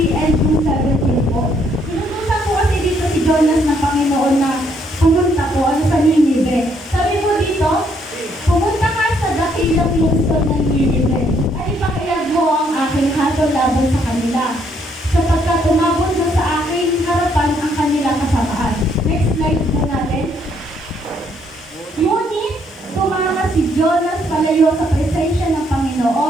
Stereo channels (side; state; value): both; normal; correlation 0.70